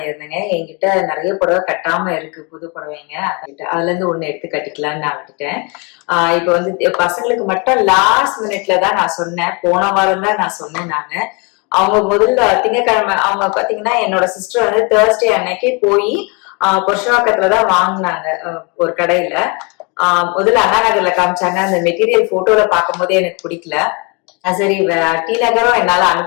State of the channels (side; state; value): right; quieter; 31.4 dB